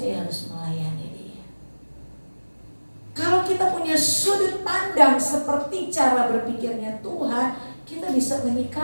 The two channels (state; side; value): inverted; both; correlation -1.00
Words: harus melayani dia. Kalau kita punya sudut pandang seperti cara berpikirnya Tuhan, kita bisa